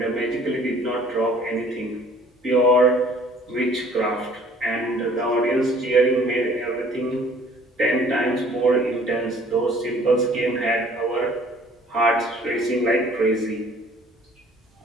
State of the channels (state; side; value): normal; both; correlation 0.54